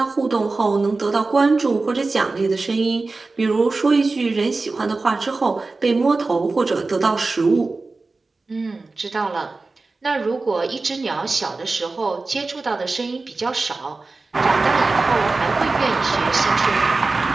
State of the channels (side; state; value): left; quieter; 3.6 dB